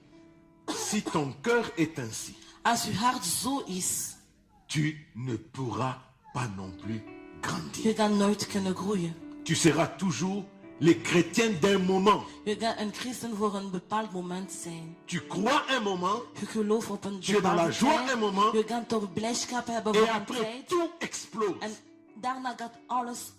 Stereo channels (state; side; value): identical; both; correlation 1.00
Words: Si ton cœur est ainsi, Als je hart zo is, tu ne pourras pas non plus grandir. je gaat nooit kunnen groeien. Tu seras toujours le chrétien d'un moment. Je gaat een christen voor een bepaald moment zijn. Tu crois un moment Je gelooft op een Tu es dans la bepaalde joie tijd. un moment. Je gaat toch blijdschap hebben et voor een après tijd. tout explose. En daarna gaat alles